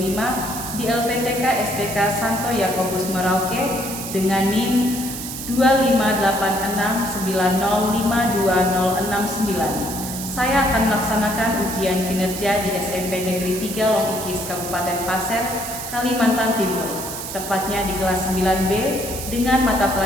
di LPTK STK Santo Yakobus Merauke dengan NIM 25869052069. Saya akan melaksanakan ujian kinerja di SMP Negeri 3 Longikis Kabupaten Pasir, Kalimantan Timur, tepatnya di kelas 9B dengan mata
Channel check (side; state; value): right; noise; hiss, 8 dB below the sound